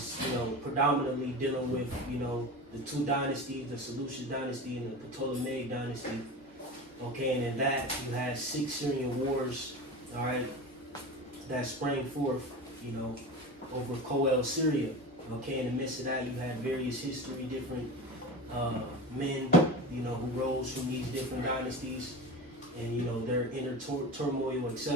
predominantly dealing with the two dynasties, the Seleucid dynasty and the Ptolemaic dynasty. Okay, and in that you had 6 Syrian wars, all right, that sprang forth, over Coel, Syria. Okay, in the midst of that you had various history, different men, who rose from these different dynasties, and their inner turmoil,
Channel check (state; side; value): normal; both; correlation 0.29